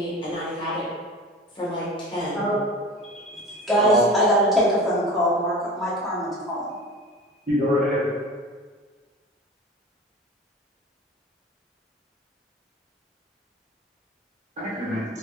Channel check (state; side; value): normal; both; correlation 0.35